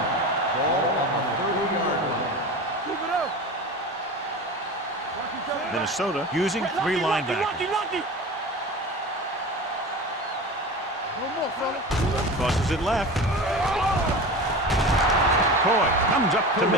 Ball on the 30-yard line. Keep it up. Minnesota using 3 linebackers. No on, fella. Tosses it left. Coy comes up to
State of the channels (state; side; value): normal; both; correlation 0.31